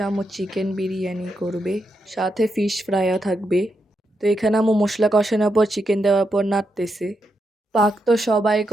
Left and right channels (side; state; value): both; normal; correlation 0.83